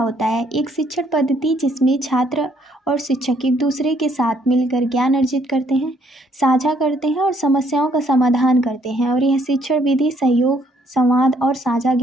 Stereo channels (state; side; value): normal; both; correlation 0.67